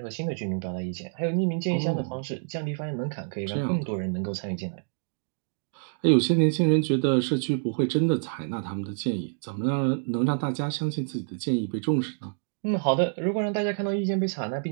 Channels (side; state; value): left; silent; digital silence